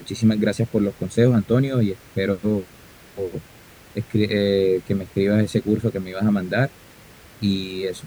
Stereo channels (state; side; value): identical; both; correlation 1.00